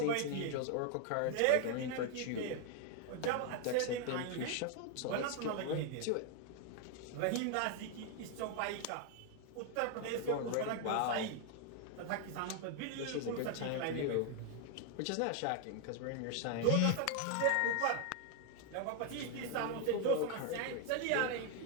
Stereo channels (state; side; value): different; both; correlation 0.00